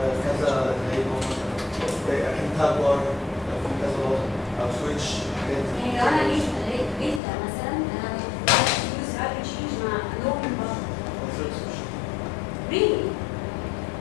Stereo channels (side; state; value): right; drops out; at 7.2 s